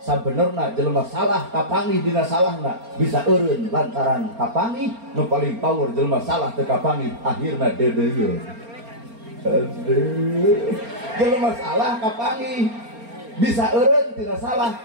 Sabenerna jelema salah kapangih dina salahna bisa eureun lantaran kapangih. Nu paling power jelema salah teu kapangih akhirna deudeuyeun. Aduh. Jelema salah kapangi bisa eureun tina salah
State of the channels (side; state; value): left; late; 4.3 ms